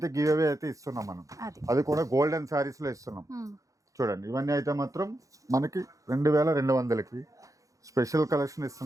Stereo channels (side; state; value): left; late; 0.16 ms